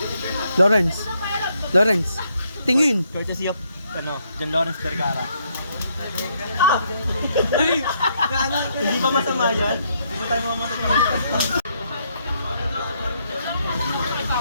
Lawrence. Lawrence. Tingin. Courtesy of, John Lawrence Vergara. Hindi ba masama yan? Hindi ba tayo mamatay?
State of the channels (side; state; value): both; inverted; correlation -0.73